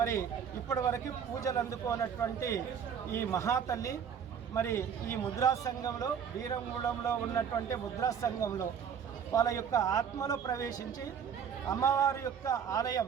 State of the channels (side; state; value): left; quieter; 7.6 dB